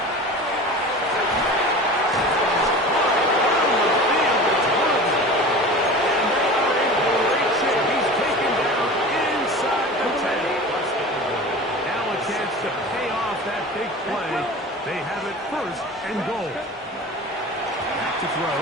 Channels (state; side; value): normal; both; correlation 0.36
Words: To pay off that big play, they have it first and goal. Back to throw,